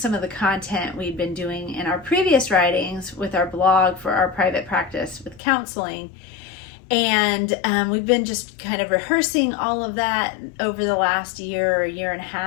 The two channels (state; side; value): drops out; right; at 5.4 s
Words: of the content we'd been doing in our previous writings with our blog for our private practice with counseling. And we've been just kind of rehearsing all of that over the last year or year and a